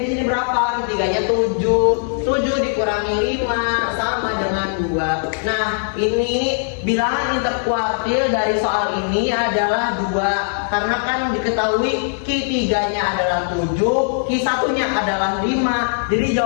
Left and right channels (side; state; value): right; silent; digital silence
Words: di sini berapa? Q3-nya 7. 7 dikurangi 5 sama dengan 2. Nah, ini bilangan interkuartil dari soal ini adalah 2. Karena kan diketahui Q3-nya adalah 7, Q1-nya adalah 5. Jadi